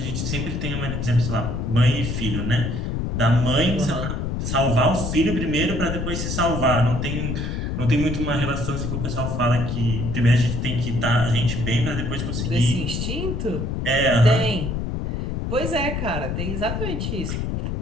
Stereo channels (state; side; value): noise; left; rumble, 2 dB below the sound